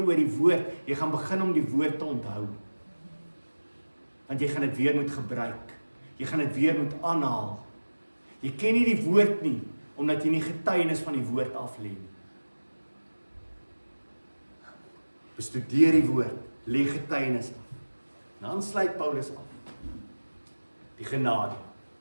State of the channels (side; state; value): both; inverted; correlation -1.00